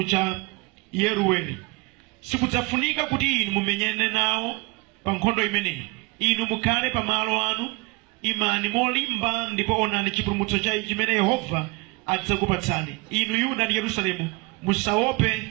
cha Yerueli. Sikudzafunika kuti inu mumenyane nawo pa nkhondo imeneyi. Inu mukhale pa malo anu, imani molimba, ndipo onani chipulumutso chimene Yehova adzakupatsani. Inu Yuda ndi Yerusalemu, musaope,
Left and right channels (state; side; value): quieter; left; 26.0 dB